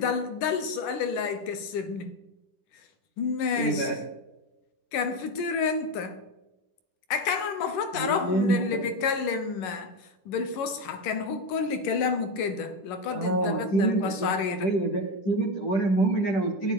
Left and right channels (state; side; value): late; right; 11 ms